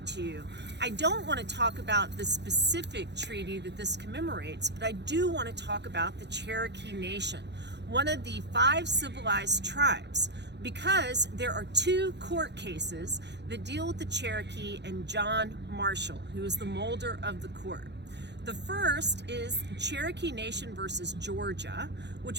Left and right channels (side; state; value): left; late; 0.50 ms